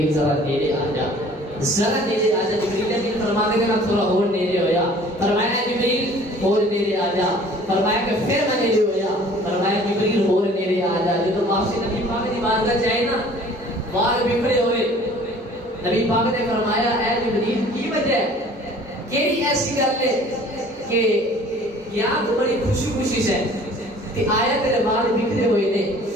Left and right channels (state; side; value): normal; both; correlation 0.50